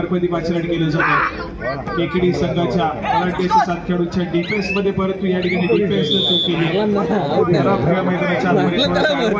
पाचलाट केलं जातं. केकेडी संघाच्या बलाढ्याच्या 7 खेळाडूंच्या डिफेन्स मध्ये परंतु या ठिकाणी डिफेन्स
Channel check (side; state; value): both; identical; correlation 1.00